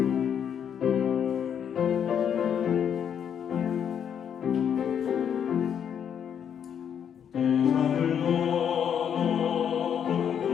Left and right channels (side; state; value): right; quieter; 8.4 dB